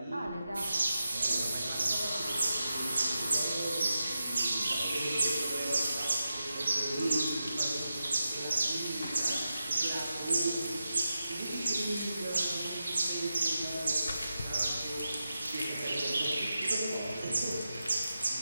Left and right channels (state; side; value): inverted; both; correlation -0.90